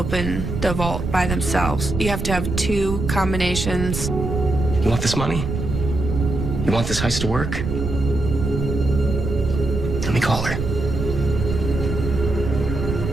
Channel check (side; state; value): right; noise; rumble, 4 dB below the sound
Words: the vault by themselves. You have to have 2 combinations. You want this money? You want this heist to work? Let me call her.